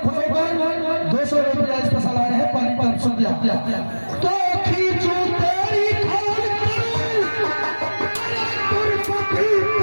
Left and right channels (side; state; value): both; inverted; correlation -1.00